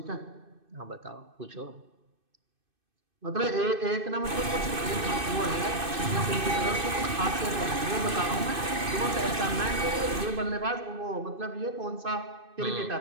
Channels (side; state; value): left; late; 2.6 ms